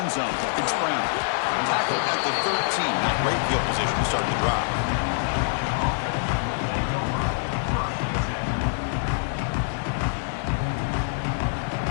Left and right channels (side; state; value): right; silent; digital silence